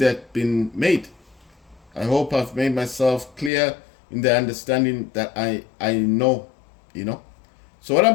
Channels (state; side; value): drops out; right; at 3.5 s